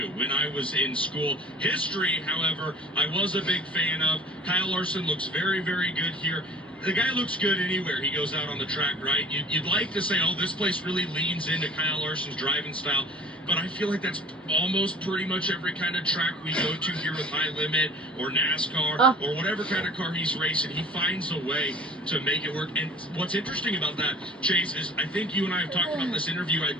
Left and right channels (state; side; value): normal; both; correlation 0.46